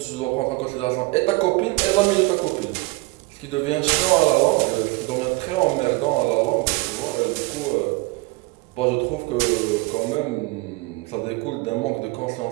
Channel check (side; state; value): left; quieter; 23.1 dB